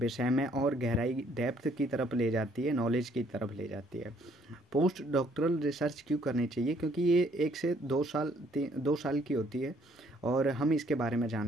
में और गहराई, डेप्थ की तरफ ले जाती है, नॉलेज की तरफ ले जाती है। पोस्ट डॉक्टरल रिसर्च क्यों करनी चाहिए? क्योंकि ये 1 से 2 साल 2 साल की होती है। और हम इसके बारे में जान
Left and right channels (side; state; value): both; normal; correlation 0.64